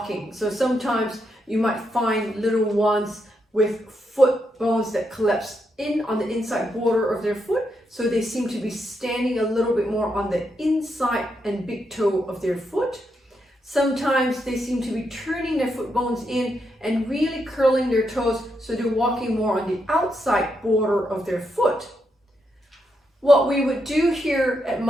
So sometimes you might find little ones with foot bones that collapse in on the inside border of their foot. So they seem to be standing a little bit more on the inside and big toe of their foot. Sometimes they seem to be turning their foot bones in and really curling their toes, so they're walking more on the outside border of their foot. What we would do here at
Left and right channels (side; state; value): both; normal; correlation 0.81